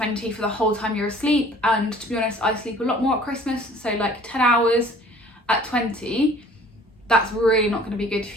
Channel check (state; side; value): normal; both; correlation 0.51